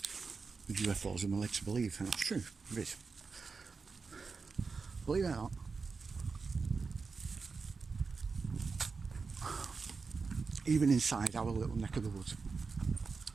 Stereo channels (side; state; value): left; quieter; 4.7 dB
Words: with UFOs than we're led to believe, and that's true, it is. Believe it or not, even inside our little neck of the woods,